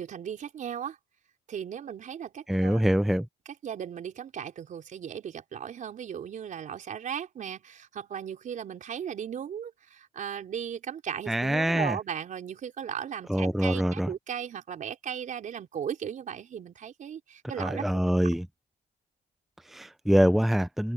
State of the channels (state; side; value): normal; both; correlation 0.85